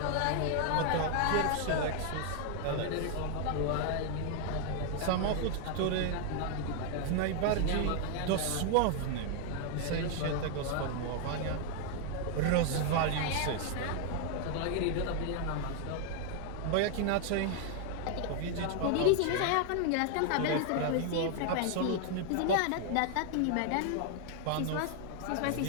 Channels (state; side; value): different; both; correlation 0.00